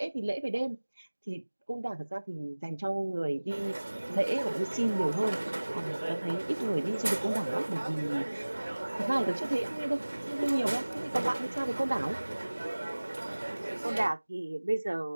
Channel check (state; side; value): inverted; both; correlation -1.00